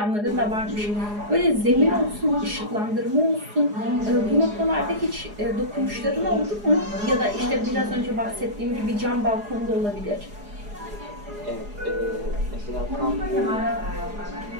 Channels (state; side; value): late; left; 4.8 ms